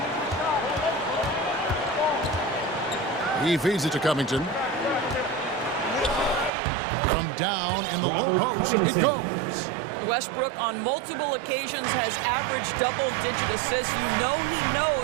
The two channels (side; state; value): left; drops out; at 6.5 s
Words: He feeds it to Covington. From down in the low post, it goes. Westbrook on multiple occasions has averaged double-digit assists. You know he